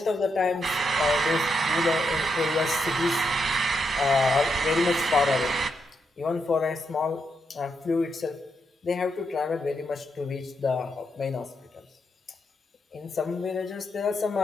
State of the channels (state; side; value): normal; both; correlation 0.82